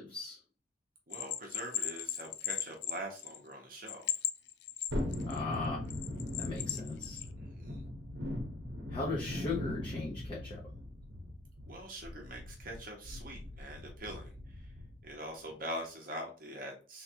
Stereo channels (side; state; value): right; quieter; 3.1 dB